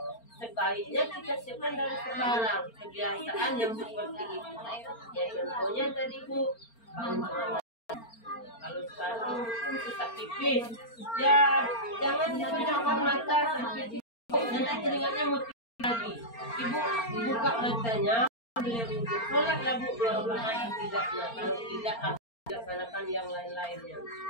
sebaiknya kita siapkan dari sekarang, kebiasaan yang seperti itu. Ya contohnya tadi Bu, kalau sekarang sesak pipis, ya jangan dipejamkan mata sampai pipis, nanti keringatnya mesti lagi. Ibu buka matanya, sholatlah Bu 2 rakaat tidaknya, kalau tidak laksanakan yang lain-lainnya.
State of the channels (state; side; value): late; right; 4.4 ms